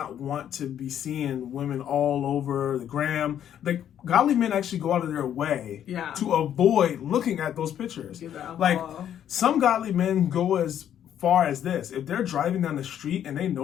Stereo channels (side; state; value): right; quieter; 10.1 dB